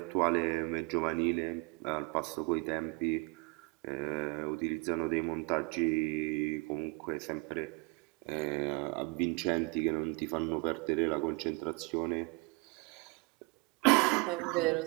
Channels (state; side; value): quieter; left; 29.1 dB